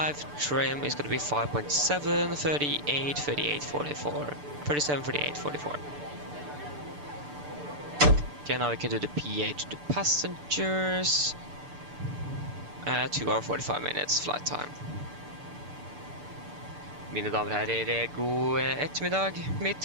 trim is going to be 5.7, 38, 38, 44, 37, 38, 44. Okay, now we can do the PA to the passengers. 2 hours 45 minutes flight time. Mine damer og herrer, god ettermiddag. Mitt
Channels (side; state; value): left; late; 6.8 ms